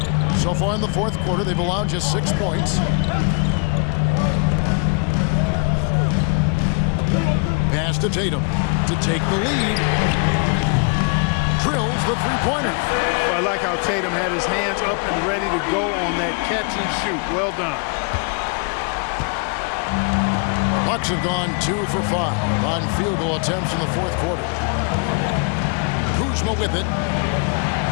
So far in the fourth quarter, they've allowed just 6 points. Pass to Tatum to take the lead. Drills the three-pointer. Well, I like how Tatum had his hands up and ready to go on that catch and shoot. Well done. Bucks have gone 2 for 5 on field goal attempts in the fourth quarter. Kuzma with it.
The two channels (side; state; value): right; quieter; 36.0 dB